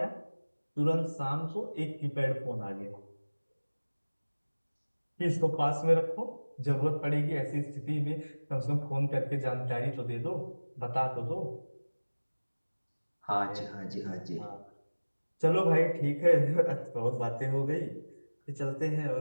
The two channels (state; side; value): inverted; both; correlation -1.00